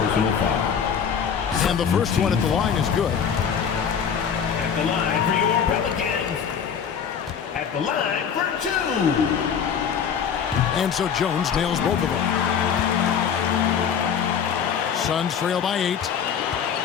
personal foul. And the first one at the line is good. At the line for your Pelicans. At the line for 2. And so Jones nails both of them. Suns trail by 8.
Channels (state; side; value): quieter; right; 7.5 dB